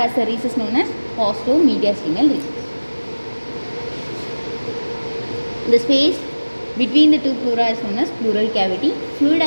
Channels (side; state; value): both; inverted; correlation -1.00